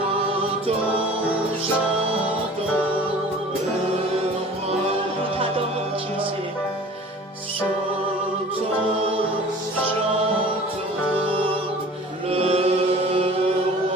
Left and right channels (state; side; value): normal; both; correlation 0.44